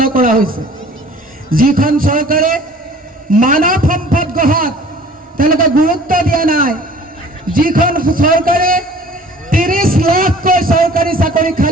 কৰা হৈছে। যিখন চৰকাৰে মানৱ সম্পদ গঢ়াত তেওঁলোকে গুৰুত্ব দিয়া নাই, যিখন চৰকাৰে 30 লাখকৈ চৰকাৰী চাকৰি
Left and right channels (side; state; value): both; normal; correlation 0.49